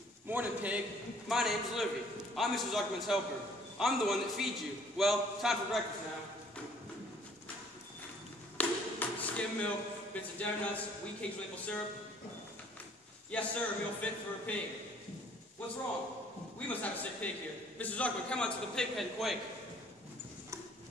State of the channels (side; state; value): both; normal; correlation 0.58